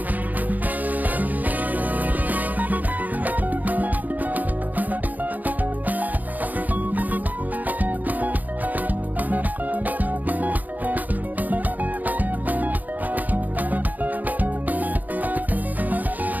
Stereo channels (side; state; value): left; late; 0.081 ms